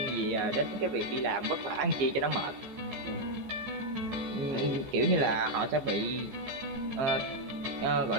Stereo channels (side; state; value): left; late; 14 ms